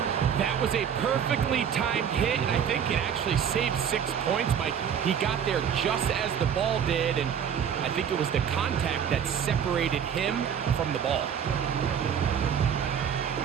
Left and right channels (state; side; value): quieter; left; 8.2 dB